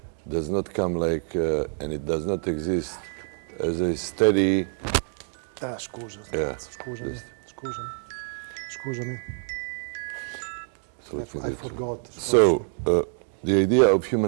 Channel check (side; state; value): left; silent; 60 dB below the other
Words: does not come like, and it does not exist as a steady... Scusa, Yeah, scusami. So let me do I it. forgot. So, the idea of